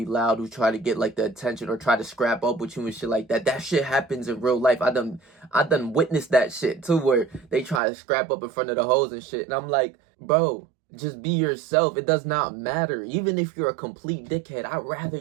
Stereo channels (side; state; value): left; drops out; at 7.8 s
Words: loud, who's trying to get like the attention or try to scrap up with you and shit like that. That shit happens in real life. I done witnessed that shit too, where they try to scrap up in front of the hoes and shit. And I'm like, bro, just be yourself. It does not matter. Even if you're a complete dickhead, I'd rather